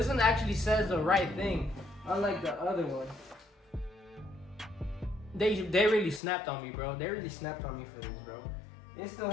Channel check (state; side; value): drops out; right; at 6.2 s